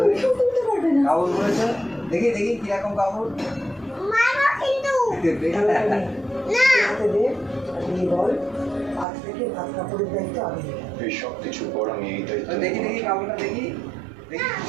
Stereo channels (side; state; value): left; drops out; at 9.1 s